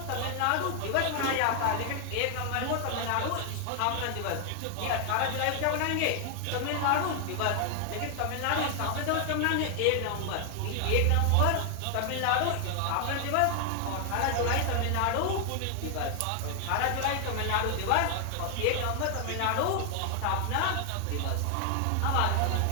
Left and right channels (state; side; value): different; both; correlation 0.00